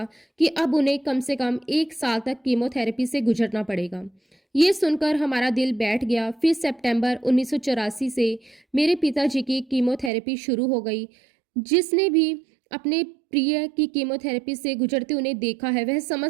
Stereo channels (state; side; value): drops out; left; at 10.1 s